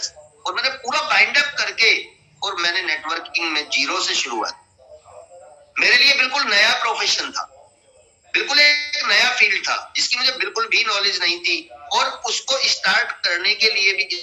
और मैंने पूरा बाइंड अप करके और मैंने नेटवर्किंग में जीरो से शुरुआत। मेरे लिए बिल्कुल नया प्रोफेशन था, बिल्कुल एक नया फील्ड था जिसकी मुझे बिल्कुल भी नॉलेज नहीं थी और उसको स्टार्ट करने के लिए भी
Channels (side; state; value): both; identical; correlation 1.00